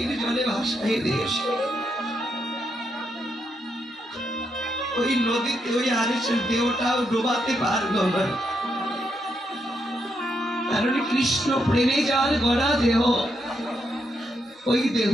জলে ভাসাই দিয়েছে। ওই নদীতে ওই হারেসের দেহটাও ডোবাতে পারলো না, কারণ কৃষ্ণ প্রেমে যার গড়া দেহ, ওই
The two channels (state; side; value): normal; both; correlation 0.80